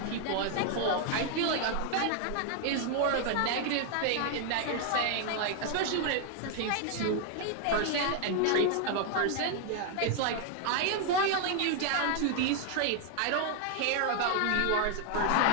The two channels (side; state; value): both; different; correlation 0.00